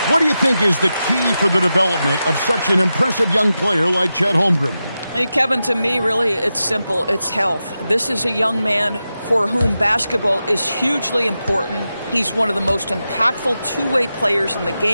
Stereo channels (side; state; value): both; inverted; correlation -0.91